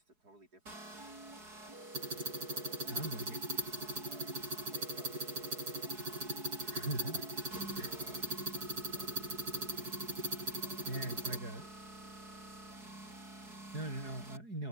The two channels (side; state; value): left; late; 4.7 ms